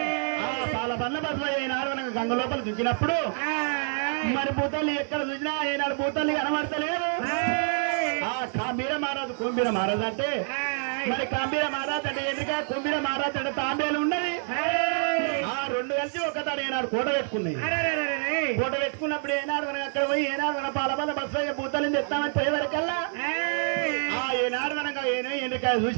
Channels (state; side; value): silent; left; 57 dB below the other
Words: పాల బండ్ల బస్సులో ఏనాడు మనకు గంగ లోపల దుంచినప్పుడు మరి భూతాలు ఎక్కడ చూసినా ఏనాడు భూతాలు కనబడతలేదు కాంబీర మహారాజు కుంబీర మహారాజు అంటే మరి కాంబీర మహారాజు అంటే ఎందుక కుంబీర మహారాజు అంటే తాంబేలు ఉన్నది ఆ రెండు కలిసి ఒకతాడు ఏనాడు కోట పెట్టుకున్నాయి కోట పెట్టుకున్నప్పుడు ఏనాడు మనం అక్కడ పోయి ఏనాడు మన పాలబల్ల బస్సు భూతాలను తెస్తామని పోయేవరకల్లా ఏనాడు మనకు ఎండ్రికాయ